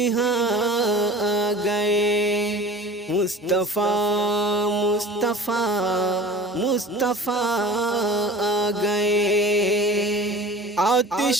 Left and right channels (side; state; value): both; normal; correlation 0.41